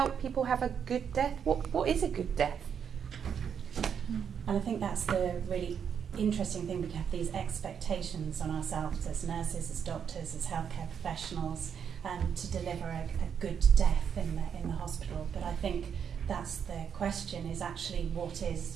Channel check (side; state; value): left; quieter; 7.6 dB